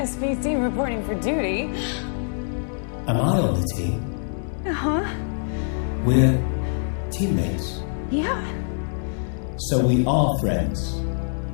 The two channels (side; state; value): right; silent; 62 dB below the other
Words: reporting for duty. Am I on the team? Uh-huh. We're teammates. Yeah. So we are friends.